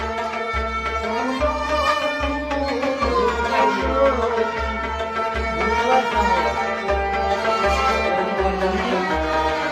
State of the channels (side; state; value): both; identical; correlation 1.00